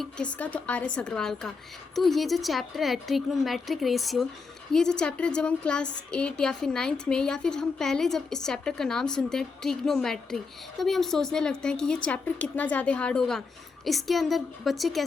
किसका, तो आर एस अग्रवाल का। तो ये जो चैप्टर है ट्रिग्नोमेट्रिक रेशियो, ये जो चैप्टर जब हम क्लास 8 या फिर 9th में, या फिर हम पहले जब इस चैप्टर का नाम सुनते हैं ट्रिग्नोमेट्री, तभी हम सोचने लगते हैं कि ये चैप्टर कितना ज़्यादा हार्ड होगा, इसके अंदर बच्चे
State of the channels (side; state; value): right; quieter; 4.6 dB